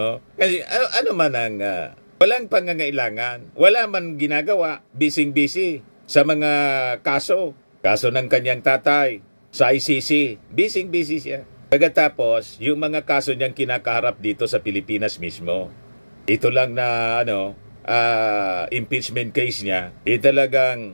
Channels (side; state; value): both; inverted; correlation -1.00